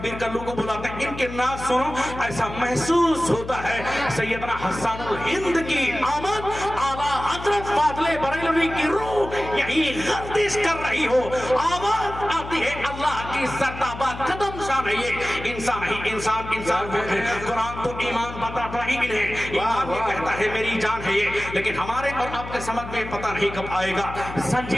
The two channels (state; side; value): noise; left; hum, 11 dB below the sound